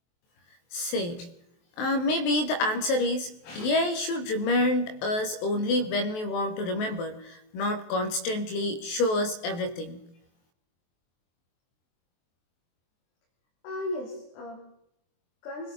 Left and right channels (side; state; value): right; late; 23 ms